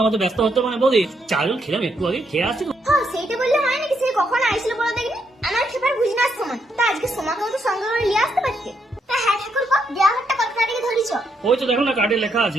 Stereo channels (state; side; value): normal; both; correlation 0.77